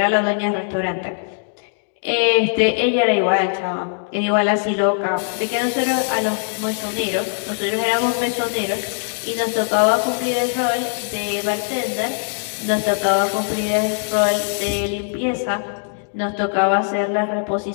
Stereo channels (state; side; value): silent; right; digital silence